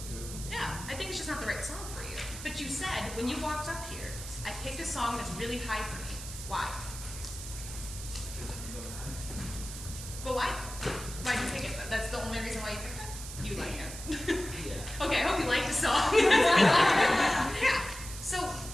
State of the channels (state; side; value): noise; right; hiss, 10 dB below the sound